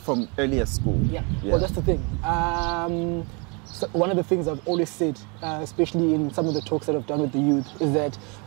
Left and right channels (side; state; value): left; quieter; 32.3 dB